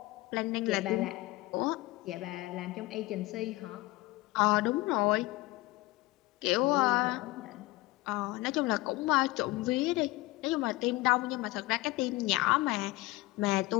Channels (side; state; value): right; quieter; 20.1 dB